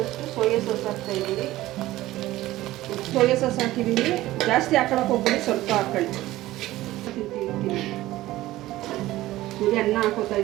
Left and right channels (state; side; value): quieter; left; 16.4 dB